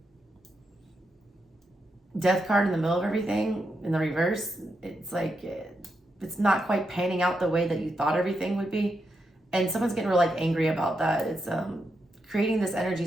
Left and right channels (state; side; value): normal; both; correlation 0.84